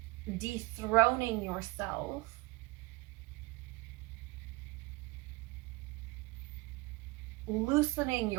dethroning yourself, loosening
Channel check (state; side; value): quieter; left; 23.0 dB